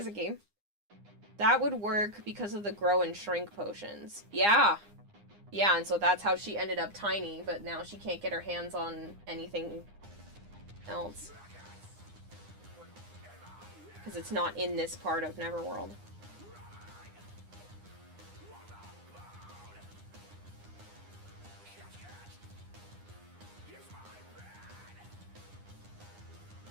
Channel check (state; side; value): late; left; 9.8 ms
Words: a game. That would work because of the grow and shrink potions. Yeah. Yeah, and so that's how she ended up tiny, but now she can't get her hands on anything else. Because it's not in this part of Neverworld.